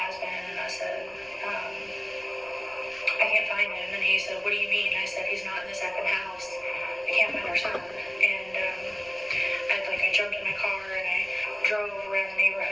husband, and I said, I can't find him. And he said, what do you mean? I said, he's not in the second house. I can't find our son. And I jumped in my car and I drove around the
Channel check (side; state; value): right; noise; rumble, 28 dB below the sound